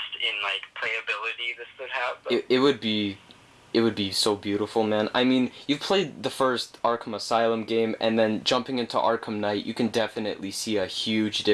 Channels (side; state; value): both; identical; correlation 1.00